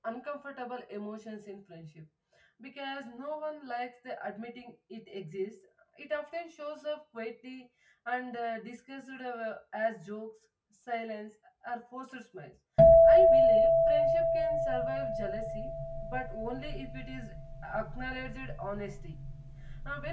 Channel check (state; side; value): identical; both; correlation 1.00